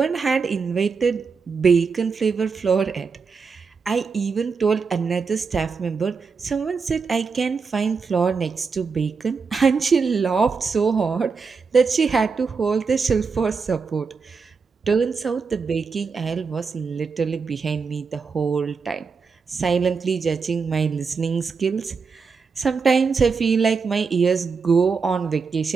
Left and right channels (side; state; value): left; quieter; 5.2 dB